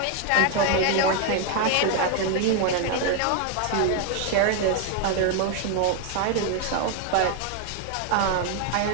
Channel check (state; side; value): different; both; correlation 0.01